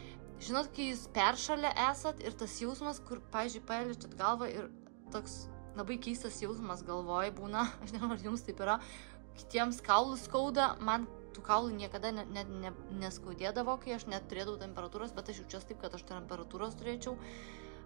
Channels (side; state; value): left; silent; digital silence